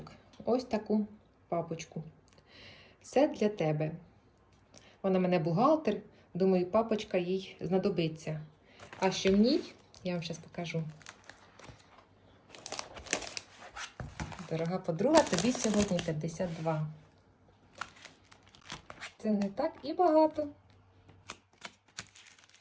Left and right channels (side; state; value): both; identical; correlation 1.00